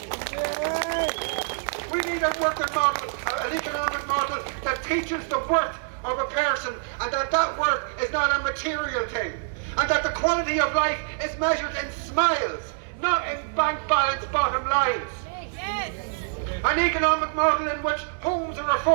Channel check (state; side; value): silent; left; 61 dB below the other